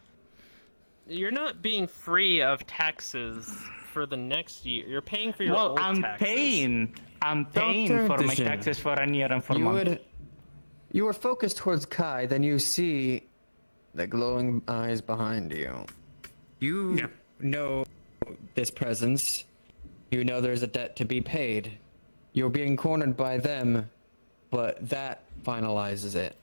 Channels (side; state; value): both; inverted; correlation -1.00